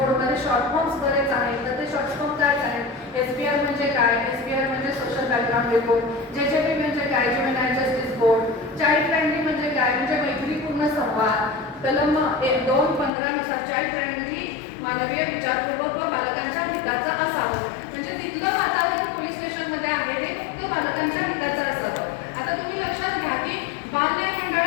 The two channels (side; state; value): right; drops out; at 13.1 s